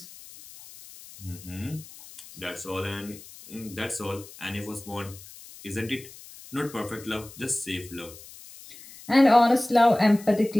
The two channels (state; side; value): noise; left; hiss, 18 dB below the sound